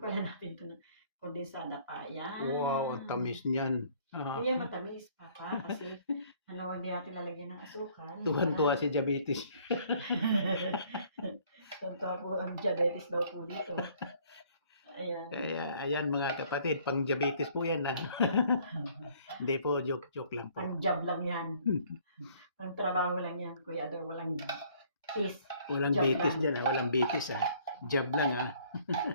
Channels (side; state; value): both; inverted; correlation -0.59